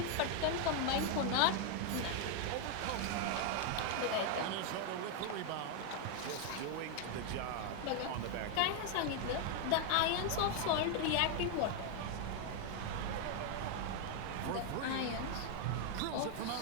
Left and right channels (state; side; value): different; both; correlation 0.00